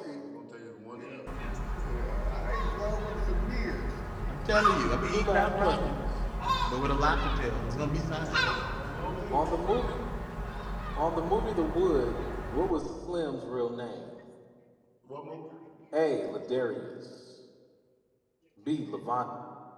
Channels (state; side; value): identical; both; correlation 1.00